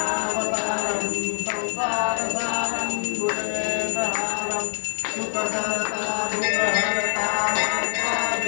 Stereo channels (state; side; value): silent; right; 55 dB below the other